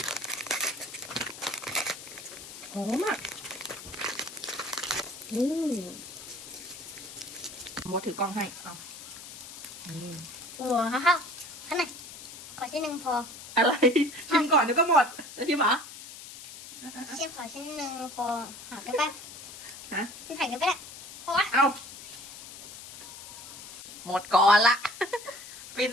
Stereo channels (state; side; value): noise; left; hiss, 13 dB below the sound